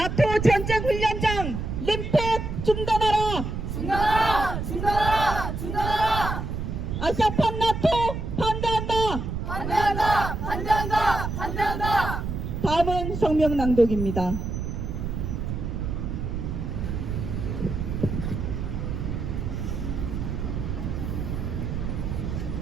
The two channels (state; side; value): noise; right; rumble, 3 dB below the sound